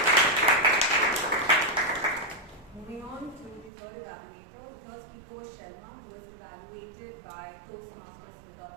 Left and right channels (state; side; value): drops out; left; at 3.7 s